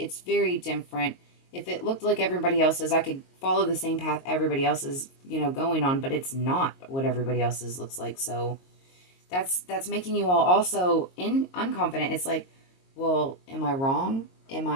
very different. If it looked like everybody else's, I could follow the same path everybody else is, going on, but it's not what everybody else's looks like. So that's making you all also unconfident. It's like, well, am I wrong? Am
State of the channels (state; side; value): late; right; 22 ms